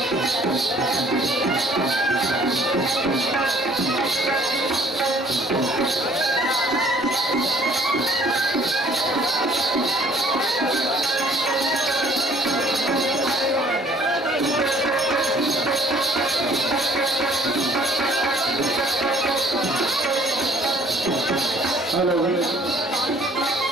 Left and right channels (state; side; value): normal; both; correlation 0.58